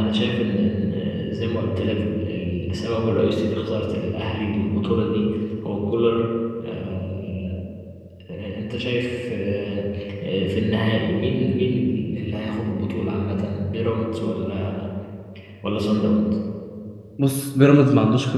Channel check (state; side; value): identical; both; correlation 1.00